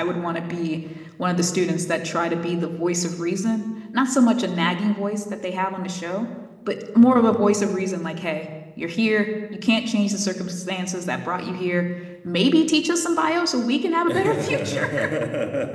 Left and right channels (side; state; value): both; identical; correlation 1.00